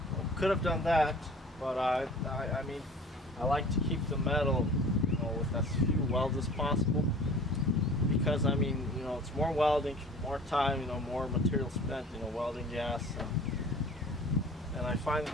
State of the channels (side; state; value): both; normal; correlation 0.45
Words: Could have done that, but I mean, I like to keep the metal, you know, with as few welds as possible, because I mean, you know, it's more welding, more time, you know, more material spent, you know, welding gas, and I find